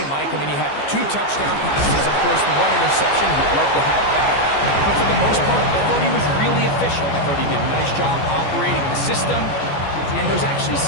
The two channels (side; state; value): right; late; 14 ms